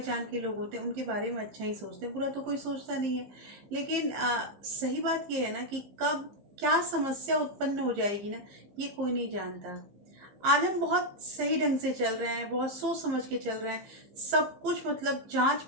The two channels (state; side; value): late; left; 15 ms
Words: के लोग होते हैं उनके बारे में अच्छा ही सोचते हैं। बुरा तो कोई सोचता नहीं है। लेकिन सही बात ये है ना कि कब क्या समस्या उत्पन्न हो जाएगी ना, ये कोई नहीं जानता। आज हम बहुत सही ढंग से चल रहे हैं, बहुत सोच समझ के चल रहे हैं, सब कुछ मतलब जांच